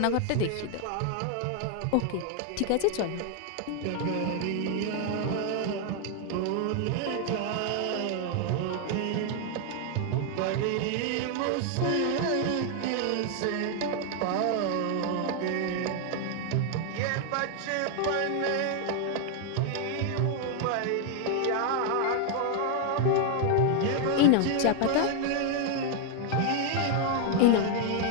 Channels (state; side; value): different; both; correlation 0.00